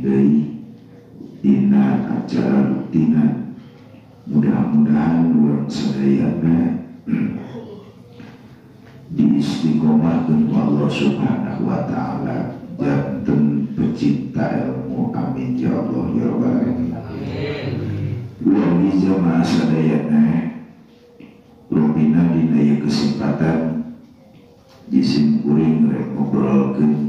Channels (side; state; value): both; identical; correlation 1.00